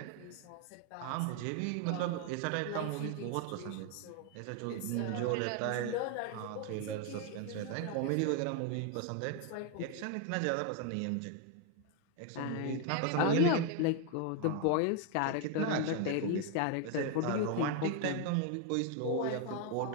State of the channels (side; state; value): both; different; correlation 0.01